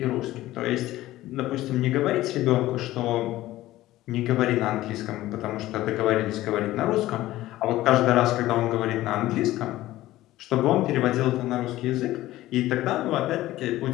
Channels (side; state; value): right; quieter; 16.0 dB